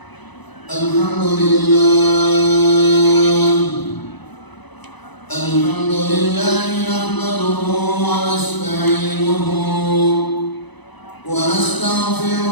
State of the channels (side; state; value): right; late; 1.0 ms